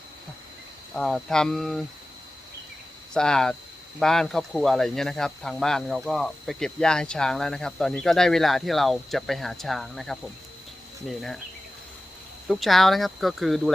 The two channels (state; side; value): normal; both; correlation 0.95